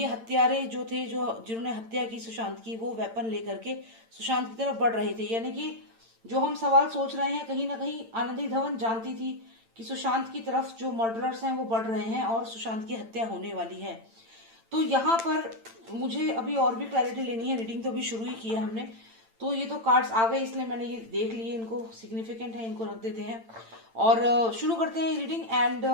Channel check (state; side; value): late; left; 8.9 ms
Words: हत्यारे जो थे, जो जिन्होंने हत्या की सुशांत की, वो वेपन लेकर के सुशांत की तरफ बढ़ रहे थे। यानी कि जो हम सवाल सोच रहे हैं, कहीं ना कहीं आनंदी धवन जानती थी कि सुशांत की तरफ जो मर्डरर्स हैं वो बढ़ रहे हैं और सुशांत की हत्या होने वाली है। तो यहाँ पर मुझे अभी और भी क्लैरिटी लेनी है। रीडिंग तो अभी शुरू ही की है हमने, तो ये तो कार्ड्स आ गए इसलिए मैंने ये देख लिए, इनको सिग्निफिकेंट है, इनको रख देते हैं और शुरू करते हैं रीडिंग। एंड